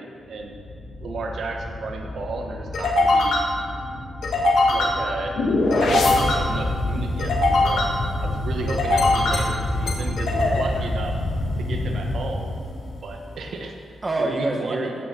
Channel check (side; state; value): both; normal; correlation 0.82